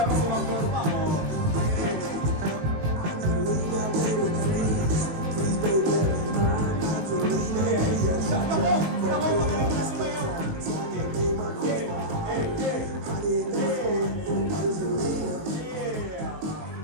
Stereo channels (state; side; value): late; left; 19 ms